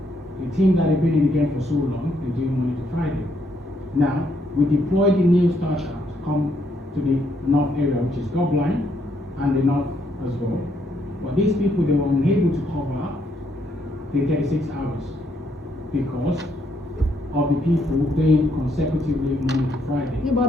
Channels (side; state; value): both; normal; correlation 0.73